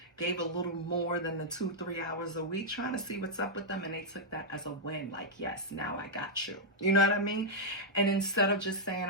gave a little more than the 2-3 hours a week, trying to see what's up with them, and they took that as a win, like, yes, now I got you. You know what I mean? And instead of just saying,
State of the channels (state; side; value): normal; both; correlation -0.06